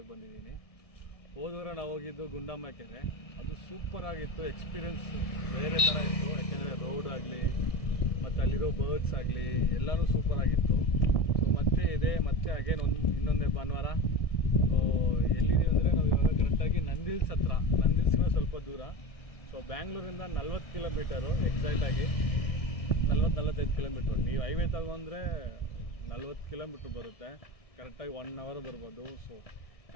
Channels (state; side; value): late; right; 1.6 ms